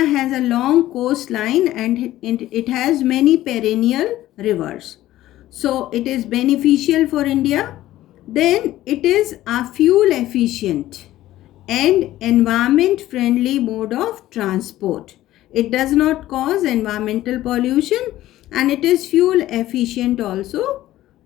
a long coastline and it has many perennial rivers. So it is beneficial for India. Then it is a fuel efficient and environment friendly mode of transport. It does not cause environmental pollution and it is fuel efficient also,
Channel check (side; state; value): right; quieter; 14.8 dB